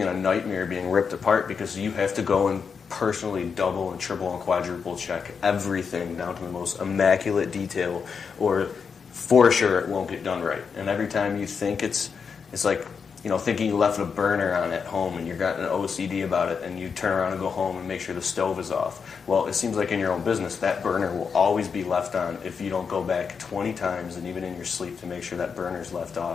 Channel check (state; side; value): quieter; right; 6.0 dB